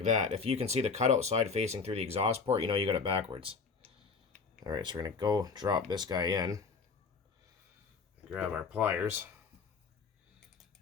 that. If you can see the cutout side facing through the exhaust port, you know you got it backwards. Alright, so we're going to go drop this guy in. Grab our pliers.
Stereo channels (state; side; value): quieter; right; 4.9 dB